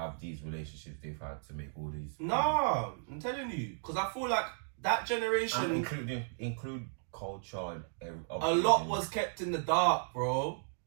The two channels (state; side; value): silent; left; digital silence